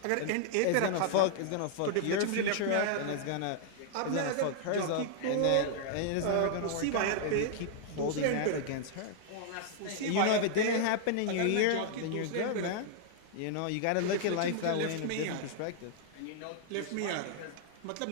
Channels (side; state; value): both; different; correlation -0.01